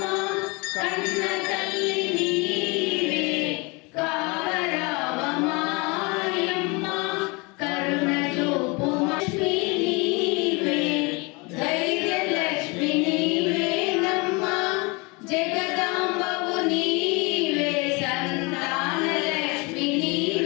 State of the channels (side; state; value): right; quieter; 28.1 dB